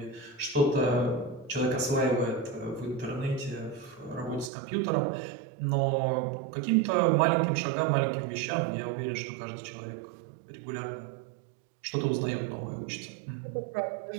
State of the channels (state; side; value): drops out; left; at 4.5 s